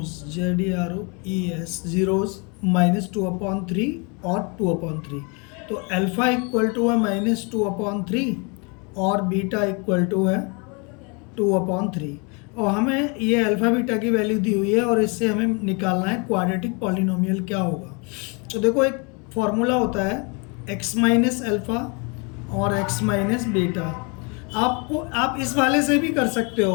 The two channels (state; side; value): quieter; right; 32.4 dB